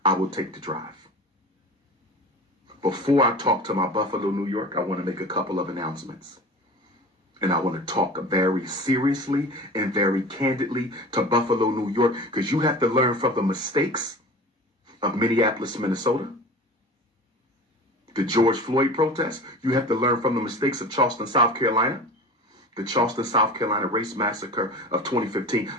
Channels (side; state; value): both; normal; correlation 0.36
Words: I will take the drive. Before I talk to my Buffalo, New York, I want to make a couple of announcements. And I want to talk very seriously and very candidly to Buffalo, New York, because you have to learn from the mistakes of Minneapolis, Minnesota, the George Floyd protests. You have to learn from the mistakes of Charleston, South Carolina, the Charleston, South Carolina race massacre of 2015.